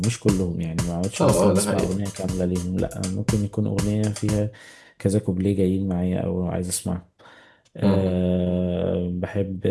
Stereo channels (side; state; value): both; identical; correlation 1.00